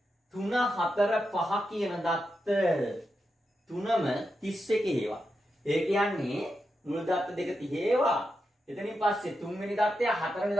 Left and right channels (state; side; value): normal; both; correlation 0.87